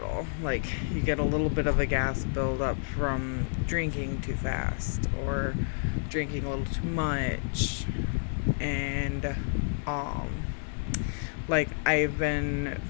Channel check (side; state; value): right; silent; 55 dB below the other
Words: Like, you get a little bit of a gas buildup from drinking too fast or drinking a little too much. And, like, I've been